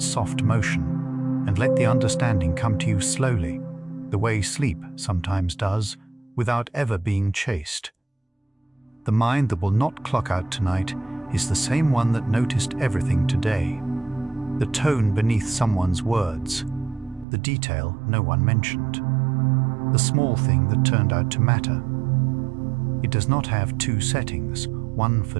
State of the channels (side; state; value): left; drops out; at 17.2 s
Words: soft motion, and let the understanding come to you slowly, the way sleep sometimes does, without ever being chased. The mind that will not clock out tonight is the same one that noticed everything today. The tone beneath someone's words, the detail no one mentioned, the small thing that turned out to matter. It does not have two settings, one for